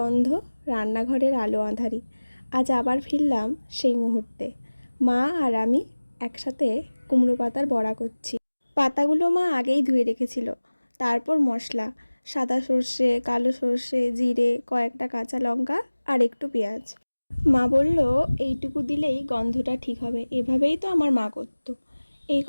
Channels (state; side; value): inverted; both; correlation -1.00